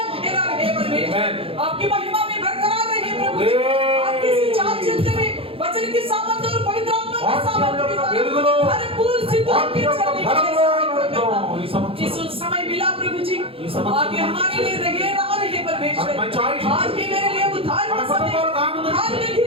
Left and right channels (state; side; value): late; left; 0.27 ms